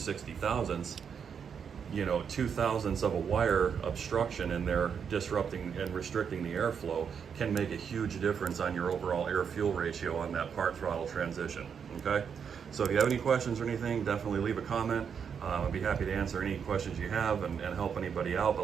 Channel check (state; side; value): quieter; left; 7.1 dB